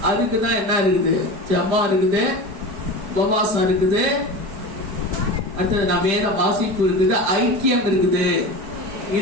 அதுக்குதான் என்ன இருக்குது? ஜெபம் இருக்குது, உபவாசம் இருக்குது, அடுத்தது வேத வாசிப்பு இருக்குது, ஐக்கியம் இருக்குது.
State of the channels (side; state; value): left; late; 5.1 ms